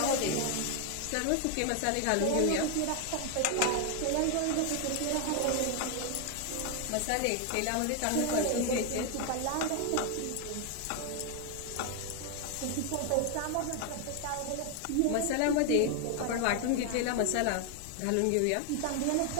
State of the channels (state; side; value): different; both; correlation 0.00